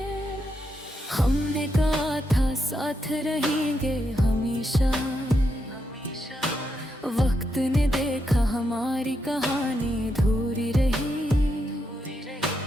हमने कहा था साथ रहेंगे हमेशा, वक्त ने देखा हमारी कहानी अधूरी रही।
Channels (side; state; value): both; normal; correlation 0.82